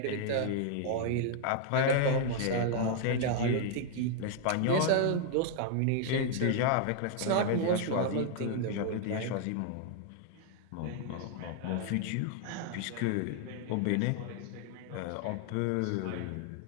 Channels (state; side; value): different; both; correlation 0.00